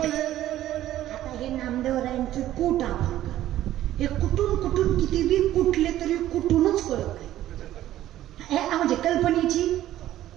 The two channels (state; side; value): quieter; left; 13.4 dB